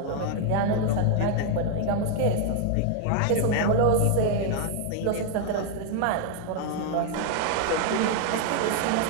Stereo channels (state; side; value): different; both; correlation 0.00